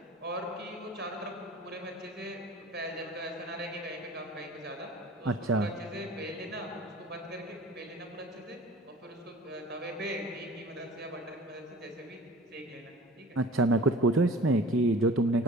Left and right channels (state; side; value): normal; both; correlation 0.43